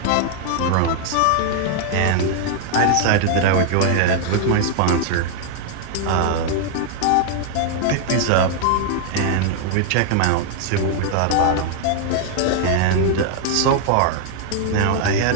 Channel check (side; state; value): both; different; correlation -0.01